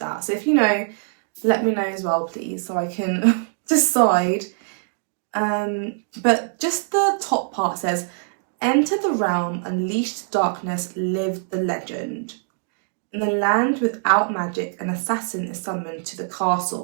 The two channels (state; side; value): silent; left; digital silence